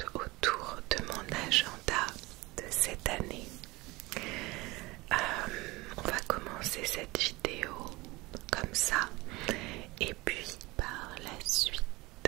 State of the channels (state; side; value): quieter; left; 22.1 dB